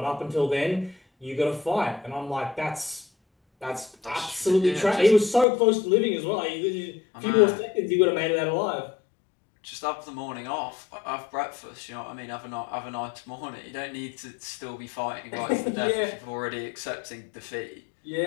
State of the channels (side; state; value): right; drops out; at 5.5 s